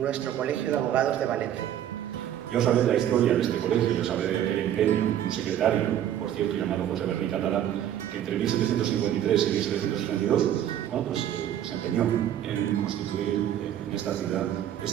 Colegio de Abogados de Valencia. Yo sabré de la historia de este colegio, yo sabré de aquel empeño de un secretario, por cierto llamado José Berni Catalán, que entre 1753 y 1762 se empeñó en constituir en esta ciudad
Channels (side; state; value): left; quieter; 10.9 dB